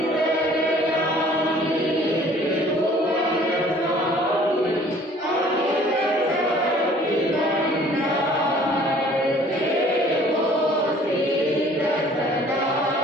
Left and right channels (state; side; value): normal; both; correlation 0.54